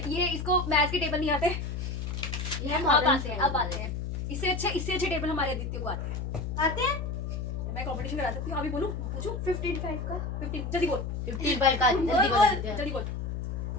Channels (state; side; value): noise; left; hum, 4 dB below the sound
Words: ये इसको मैथ्स के टेबल नहीं आते, ये अब मॉडर्न आते हैं, अब आते हैं। इससे अच्छे टेबल हमारे आदित्य को आते हैं। आते हैं मैं कंपटीशन करा सकती हूँ, अभी बोलूं, पूछूं? 15 का 15, जल्दी बोल, 15 का जल्दी बता देते हैं। जल्दी बोल।